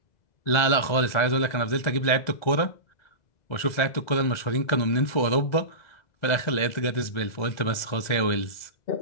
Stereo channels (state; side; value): late; right; 2.0 ms